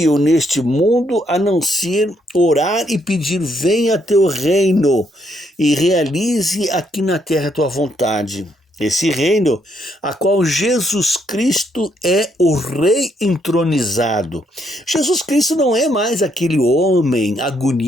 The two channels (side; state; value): both; normal; correlation 0.73